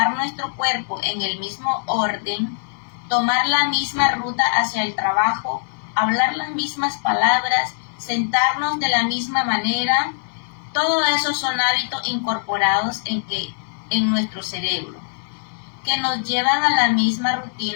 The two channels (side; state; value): right; silent; digital silence